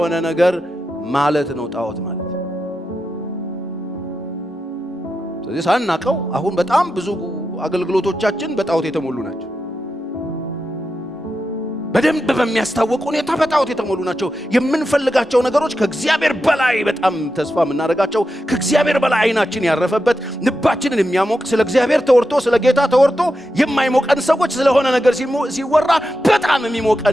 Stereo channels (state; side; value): normal; both; correlation 0.88